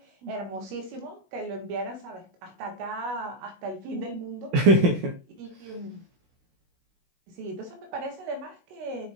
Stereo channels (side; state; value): left; late; 16 ms